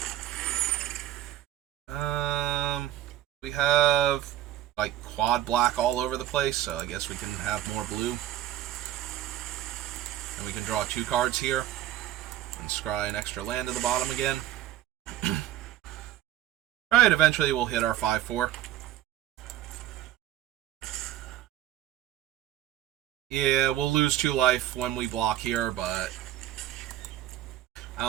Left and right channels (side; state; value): left; quieter; 13.1 dB